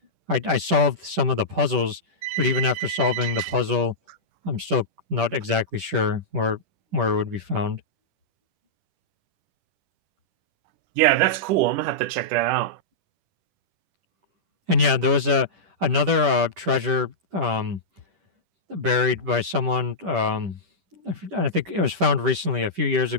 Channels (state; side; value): late; left; 10 ms